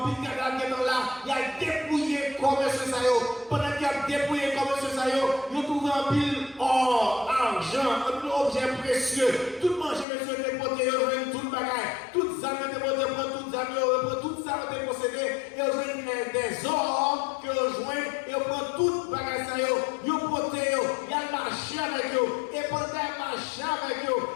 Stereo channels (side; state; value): right; drops out; at 10.1 s